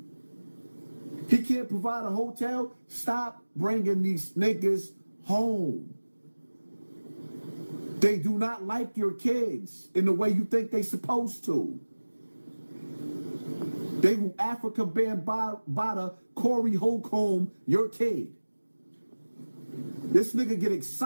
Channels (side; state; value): both; inverted; correlation -1.00